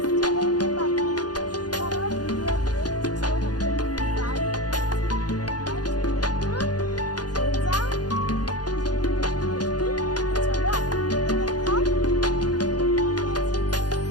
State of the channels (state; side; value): late; right; 0.69 ms